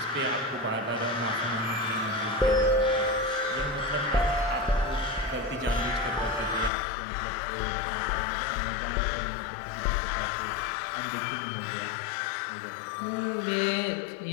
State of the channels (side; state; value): right; drops out; at 6.7 s